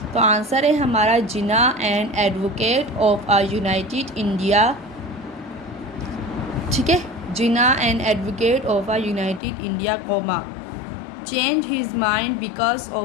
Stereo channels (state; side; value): drops out; right; at 9.4 s